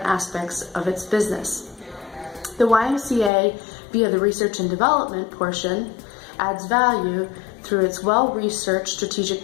aspects of its business. The YMCA, via the research and development portion, adds value through its well-researched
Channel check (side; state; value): right; drops out; at 3.3 s